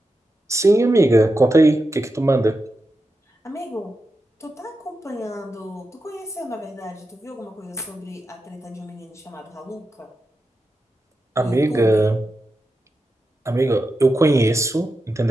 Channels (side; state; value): both; normal; correlation 0.88